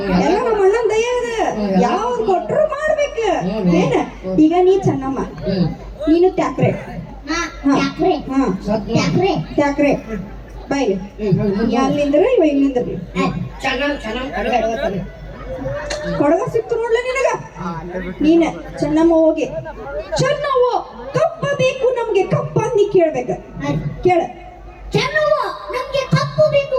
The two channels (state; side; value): identical; both; correlation 1.00